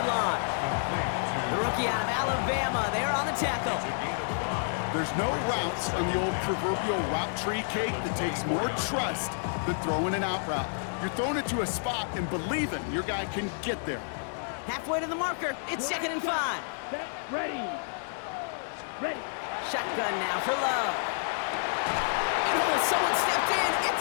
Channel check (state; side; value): silent; right; digital silence